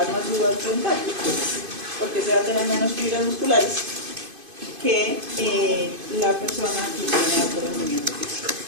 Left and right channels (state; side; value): late; left; 2.5 ms